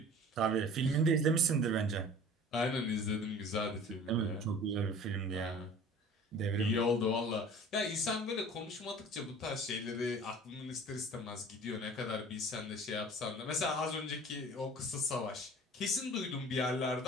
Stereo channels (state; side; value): normal; both; correlation 0.44